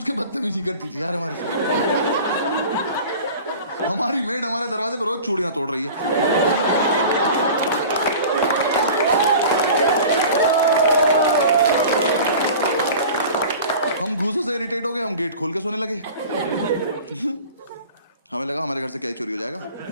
के बदतमीजी करती थी यार हमारे साथ। हमारी मेड हमारे दरवाजे पर रोज चूड़ियां तोड़ रही है। हम घूसों से इरिटेट हो गए, हम गेट खोल के सोने लगे। हमें लगा हमारे घर से क्या ही चोरी हो जाएगा।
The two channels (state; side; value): inverted; both; correlation -0.40